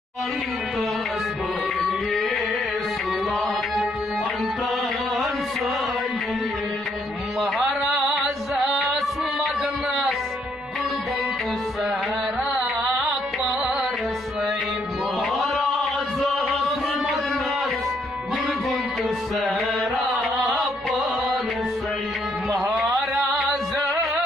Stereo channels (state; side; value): normal; both; correlation 0.71